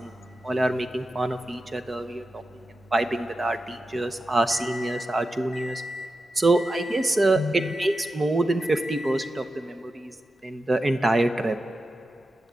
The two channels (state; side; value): normal; both; correlation 0.91